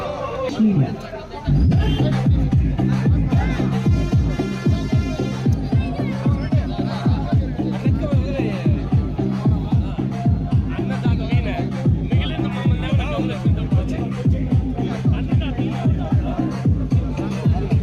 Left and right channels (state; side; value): identical; both; correlation 1.00